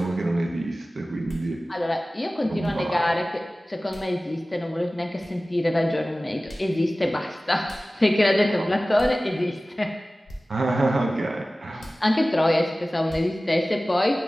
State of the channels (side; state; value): both; normal; correlation 0.97